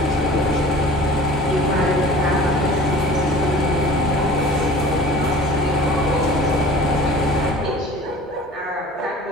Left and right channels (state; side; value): normal; both; correlation 0.43